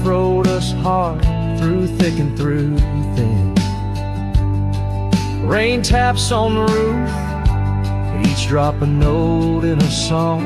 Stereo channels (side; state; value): both; identical; correlation 1.00